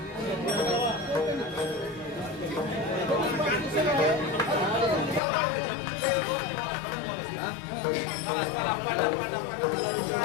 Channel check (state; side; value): drops out; right; at 5.2 s